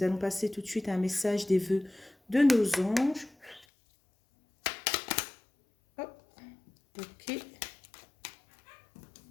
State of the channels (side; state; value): right; drops out; at 3.7 s